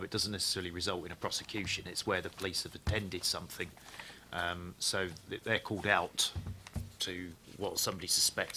it doesn't necessarily result in a prosecution. It's where the police have attended something. So they're called out to what somebody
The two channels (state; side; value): identical; both; correlation 1.00